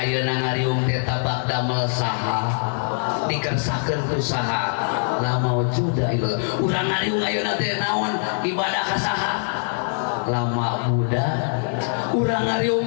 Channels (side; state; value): right; silent; 64 dB below the other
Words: ngariung teh tabak damel saha dikersakeun ku saha la maujuda illallah urang ngariung ayeuna teh naon ibadah ka saha lama muda urang ngariung